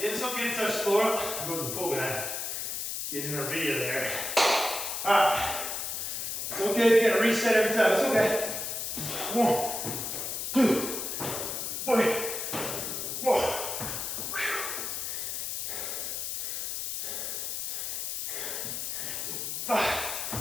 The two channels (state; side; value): noise; left; hiss, 3 dB below the sound